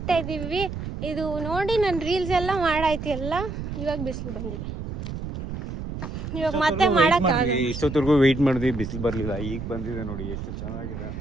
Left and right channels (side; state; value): right; noise; rumble, 7 dB below the sound